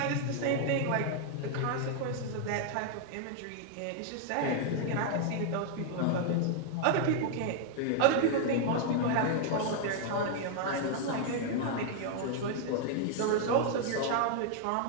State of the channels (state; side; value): different; both; correlation 0.00